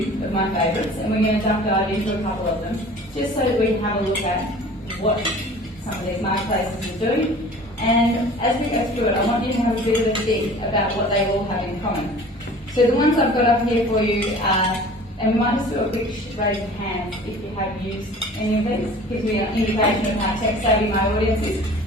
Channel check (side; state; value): both; normal; correlation 0.45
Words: of my favourites, and we're going to dive into a couple of them, just so that we can have a look at what some of these marketplaces are doing. And as we go through it, I want you to have a bit of a think about what they all have in common. So the ones I've got up here for you are, and we might just do a quick raise of hands if you have used any of these. Gives me an indication of how tech savvy my audience is.